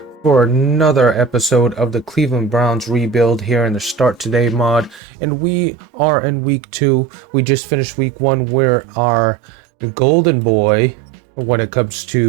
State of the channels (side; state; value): left; drops out; at 5.0 s